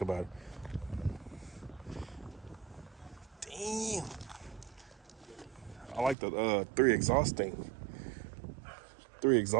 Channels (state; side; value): drops out; left; at 6.2 s